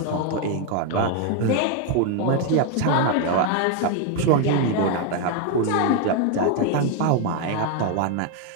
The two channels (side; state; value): both; different; correlation 0.01